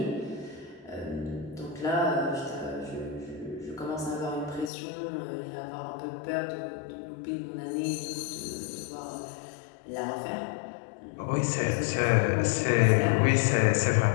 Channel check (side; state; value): right; drops out; at 4.7 s